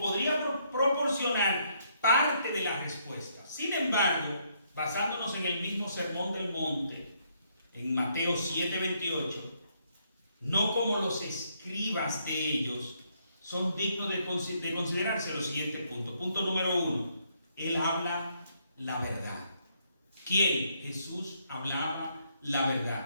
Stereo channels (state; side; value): inverted; both; correlation -0.72